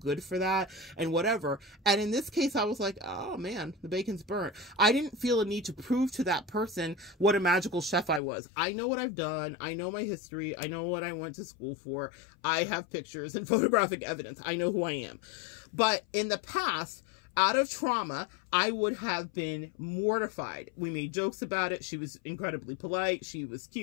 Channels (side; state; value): right; drops out; at 8.2 s